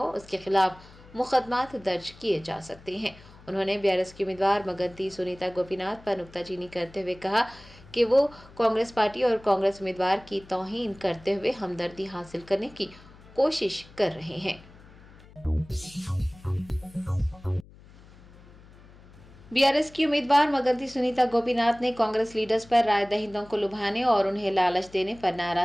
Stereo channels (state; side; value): noise; left; hum, 22 dB below the sound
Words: उसके खिलाफ मुकदमात दर्ज किए जा सकते हैं। उन्होंने बीआरएस की उम्मीदवार मगंती सुनीता गोपीनाथ पर नुक्ताचीनी करते हुए कहा कि वो कांग्रेस पार्टी और कांग्रेस उम्मीदवार की तौहीन करते हुए हमदर्दी हासिल करने की कोशिश कर रहे हैं। बीआरएस की उम्मीदवार मगंती सुनीता गोपीनाथ ने कांग्रेस लीडर्स पर राय दहिंदों को लुभाने और उन्हें लालच देने पर